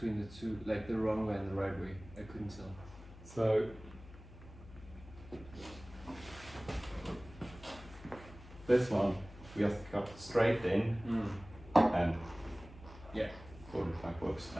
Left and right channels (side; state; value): left; noise; hum, 18 dB below the sound